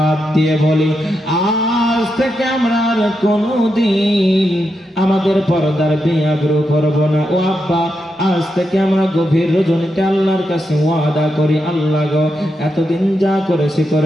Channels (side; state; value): both; normal; correlation 0.85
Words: দিয়ে বলি, আর আজ থেকে আমরা আর কোনোদিন আমাদের পর্দার বেআব্রু করব না। ও আব্বা, আজ থেকে আমরা গভীর রজনীতে আল্লাহর কাছে ওয়াদা করি, আল্লাহ গো এতদিন যা করেছি,